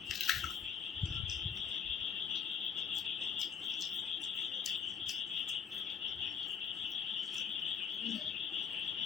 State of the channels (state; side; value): quieter; right; 7.1 dB